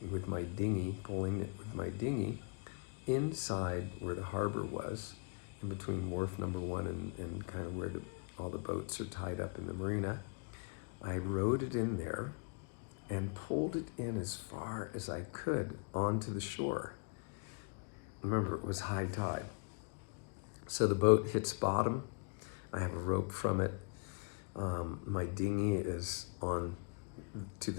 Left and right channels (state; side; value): quieter; right; 38.0 dB